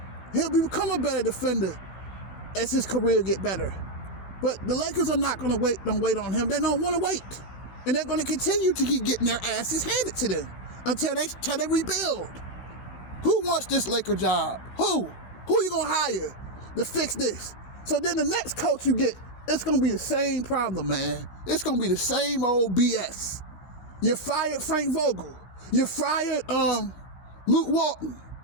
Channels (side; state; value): right; late; 15 ms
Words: He'll become a better defender as his career get better. But the Lakers are not going to wait. Don't wait on him. They don't want to wait, and they're going to continue to keep getting their asses handed to them until they rebuild. Who wants this Laker job? Who you going to hire to fix this? So then the next coach you get, it's going to be the same problem, man. It's going to be the same old BS. You fired Frank Vogel. You fired Luke Walton.